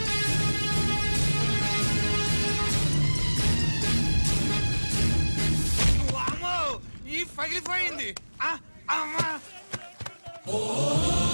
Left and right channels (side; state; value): both; inverted; correlation -1.00